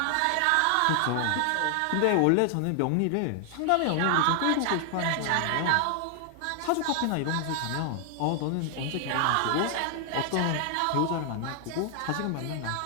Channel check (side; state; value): both; different; correlation 0.00